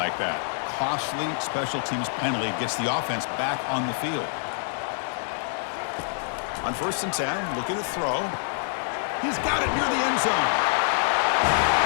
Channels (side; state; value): right; silent; digital silence